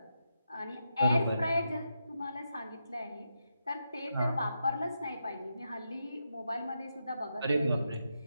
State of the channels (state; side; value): inverted; both; correlation -0.85